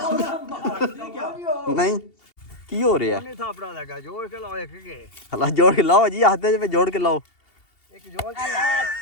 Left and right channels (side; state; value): right; late; 2.8 ms